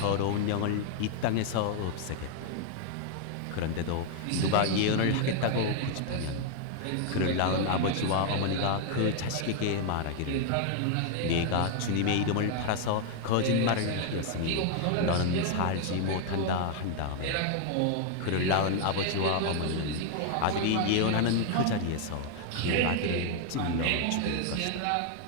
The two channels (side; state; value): both; different; correlation 0.00